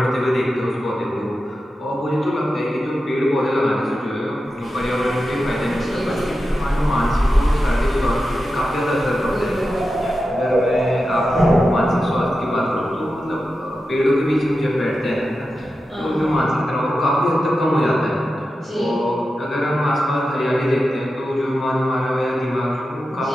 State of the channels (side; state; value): both; normal; correlation 0.91